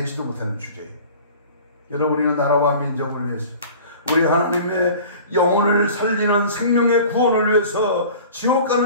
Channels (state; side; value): inverted; both; correlation -0.43